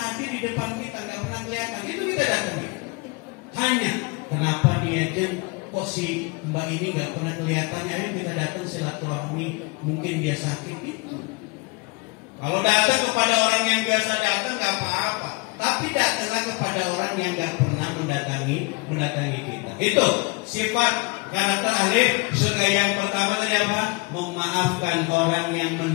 di depan kita, gak pernah kelihatan, itu kita datangi. Hanya kenapa dia kok si mbak ini gak pernah kelihatan, ya kita datang silaturahmi, mungkin dia sakit itu. Kalau datang kepada orang yang biasa datang gak apa-apa, tapi datanglah kepada orang yang gak pernah mendatangi kita. Itu sifat karakter ahli surga yang pertama tadi apa? Memaafkan orang yang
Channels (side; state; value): right; quieter; 28.0 dB